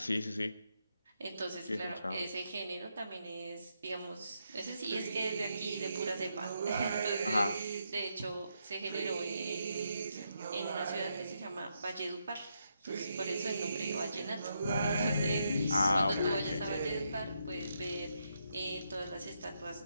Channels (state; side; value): inverted; both; correlation -0.80